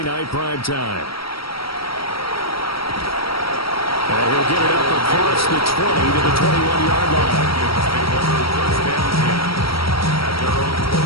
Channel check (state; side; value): late; right; 0.75 ms